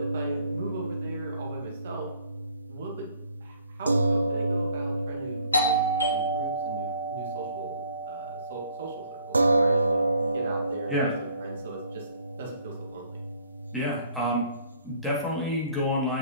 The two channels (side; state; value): both; inverted; correlation -0.59